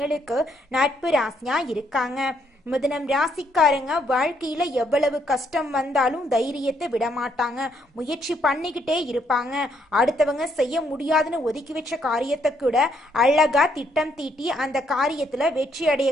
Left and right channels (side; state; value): both; normal; correlation 0.72